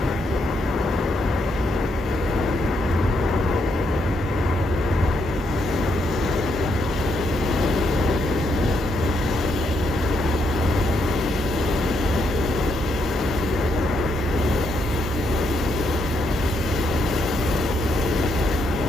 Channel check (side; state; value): both; normal; correlation 0.77